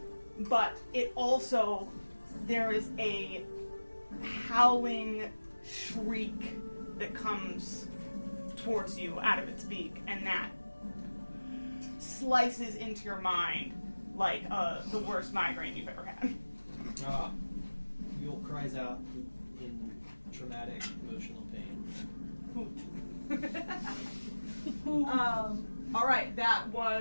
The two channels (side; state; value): both; inverted; correlation -1.00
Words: it also, there is a howling shriek that comes towards you out of its beak, and that slices into your mind like the worst migraine you've ever had. Yule cries out in traumatic emotional pain. All right, that